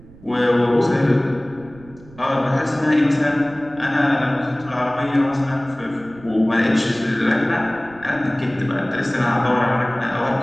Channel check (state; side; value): noise; right; rumble, 23 dB below the sound